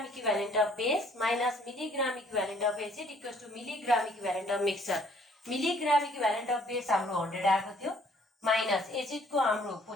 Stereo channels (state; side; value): normal; both; correlation 0.61